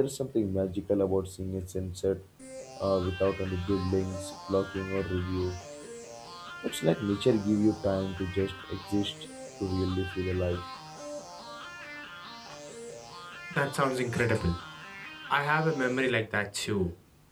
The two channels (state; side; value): identical; both; correlation 1.00